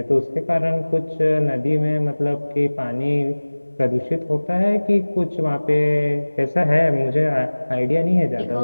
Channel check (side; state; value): both; inverted; correlation -1.00